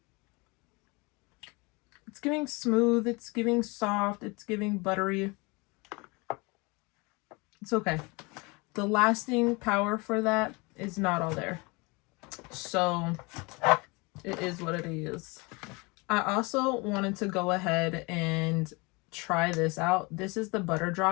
It's giving smooth, it's giving soft, it's giving buttery. It's okay. The lasting power for that is not all there. So it is what it is. I also wanted to go ahead and try this out. This is the Butter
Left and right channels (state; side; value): quieter; right; 27.1 dB